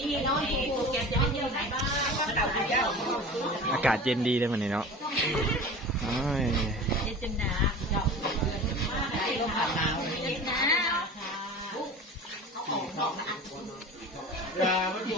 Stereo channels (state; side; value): normal; both; correlation 0.36